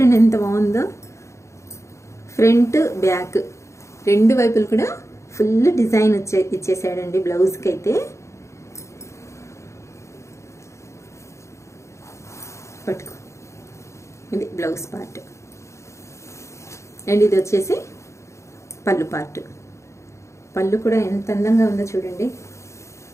ఎంత బాగుందో. ఫ్రంట్ బ్యాక్ రెండు వైపులు కూడా ఫుల్ డిజైన్ ఇచ్చేసాడండి బ్లౌజ్కి అయితే. పట్టుకో, ఇది బ్లౌజ్ పార్ట్ అండ్ ఇది వచ్చేసి పళ్ళు పార్ట్. పళ్ళు కూడా ఎంత అందంగా ఉందో చూడండి,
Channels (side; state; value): right; late; 0.14 ms